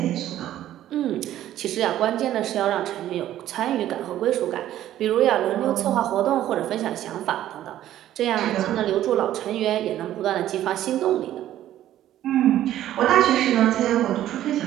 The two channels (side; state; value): left; quieter; 12.6 dB